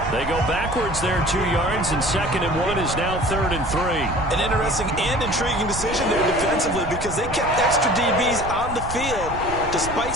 They go backwards there 2 yards, and 2nd and 1 is now 3rd and 3. An interesting and intriguing decision there defensively because they kept extra DBs on the field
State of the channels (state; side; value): noise; right; rumble, 10 dB below the sound